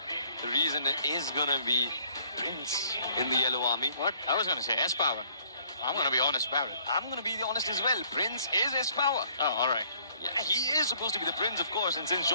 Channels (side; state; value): both; inverted; correlation -0.61